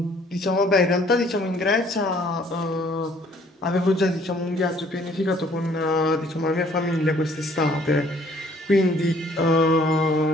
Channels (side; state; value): both; normal; correlation 0.59